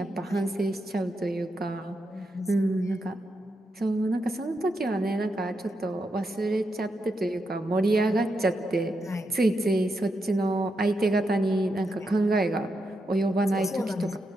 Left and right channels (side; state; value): both; normal; correlation 0.84